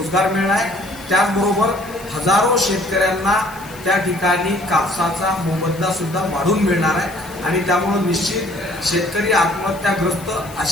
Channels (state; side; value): noise; left; hiss, 20 dB below the sound